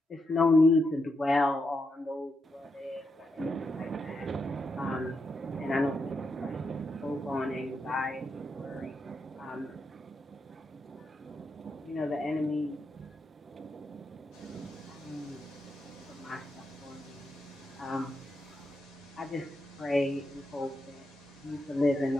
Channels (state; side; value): normal; both; correlation 0.83